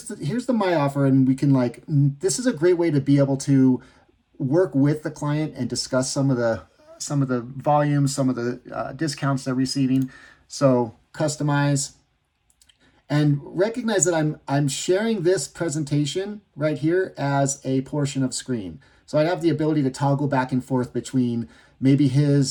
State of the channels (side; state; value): both; identical; correlation 1.00